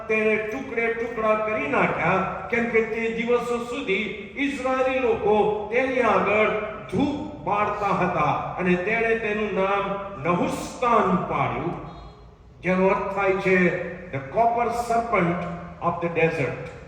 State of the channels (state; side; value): identical; both; correlation 1.00